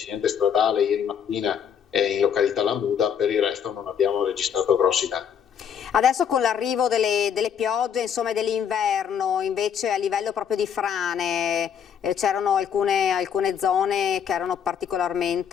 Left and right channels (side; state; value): right; quieter; 8.0 dB